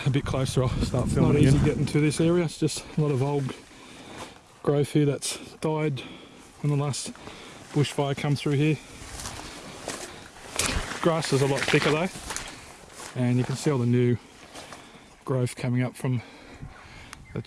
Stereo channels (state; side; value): identical; both; correlation 1.00